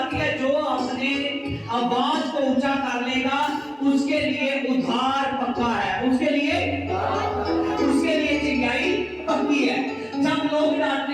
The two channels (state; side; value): identical; both; correlation 1.00